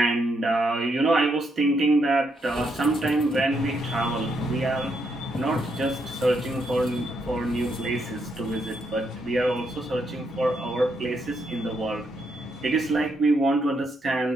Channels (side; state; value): both; normal; correlation 0.78